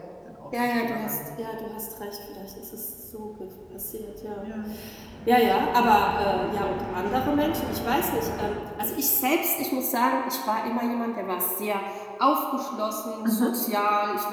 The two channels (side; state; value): both; identical; correlation 1.00